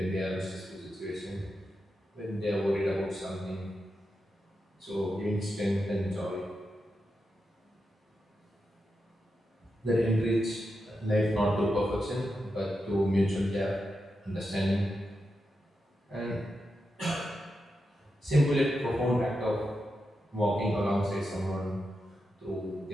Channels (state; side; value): normal; both; correlation 0.88